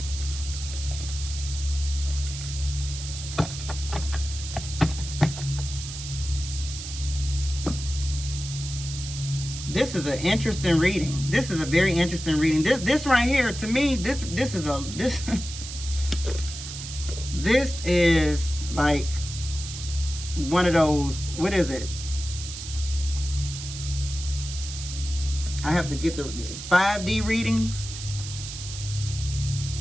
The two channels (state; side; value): noise; right; hiss, 9 dB below the sound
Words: This is an interesting reading. This is a very interesting reading. This right here, to me, this is like one of those, what is it? I have to get the 5D readings.